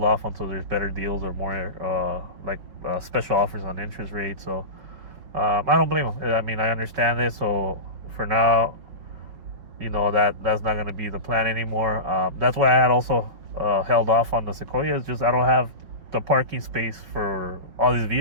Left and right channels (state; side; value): late; left; 5.3 ms